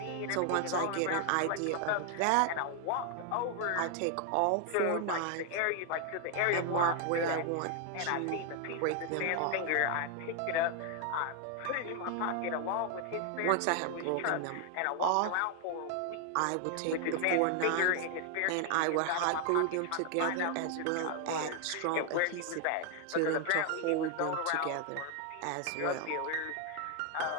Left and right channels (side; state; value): both; different; correlation 0.00